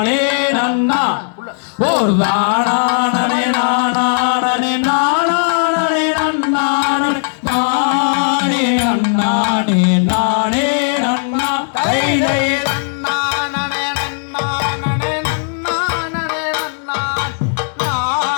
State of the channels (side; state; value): right; silent; digital silence